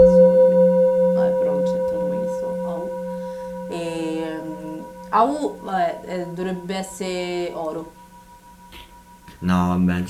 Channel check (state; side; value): identical; both; correlation 1.00